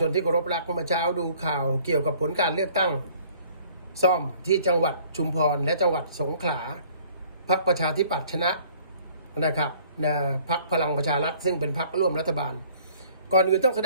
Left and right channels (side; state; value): both; inverted; correlation -0.56